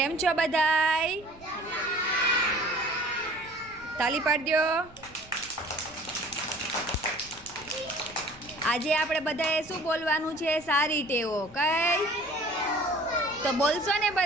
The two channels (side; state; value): right; noise; rumble, 24 dB below the sound